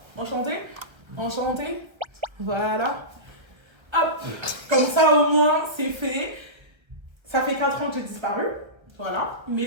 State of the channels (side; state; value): left; late; 1.5 ms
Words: Enchanté. Enchanté. Voilà. Hop, comme ça au moins c'est fait. Ça fait 4 ans que j'ai disparu. Voilà. Mais